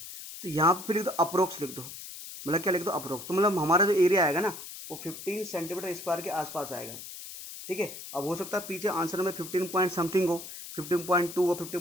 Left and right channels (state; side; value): noise; left; hiss, 12 dB below the sound